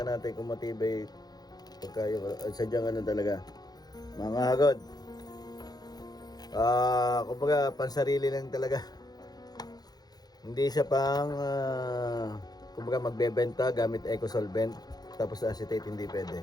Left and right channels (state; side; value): late; right; 0.19 ms